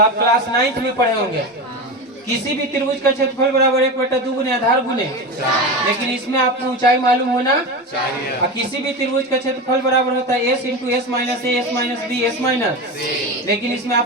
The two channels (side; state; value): both; normal; correlation 0.23